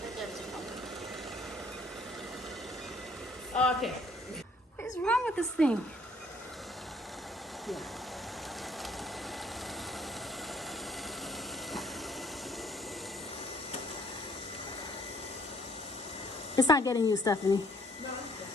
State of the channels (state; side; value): normal; both; correlation 0.62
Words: Right there, there's a crumb. Okay. What is wrong with this thing? Yeah. It's not getting you, Stephanie. No.